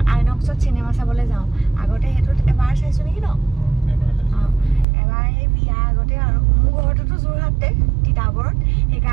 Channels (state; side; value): drops out; left; at 4.9 s